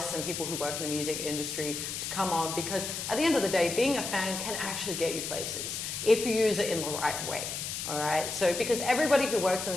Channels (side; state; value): left; noise; hiss, 5 dB below the sound